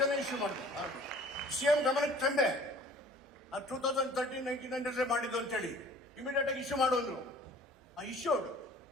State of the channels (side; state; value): both; normal; correlation 0.49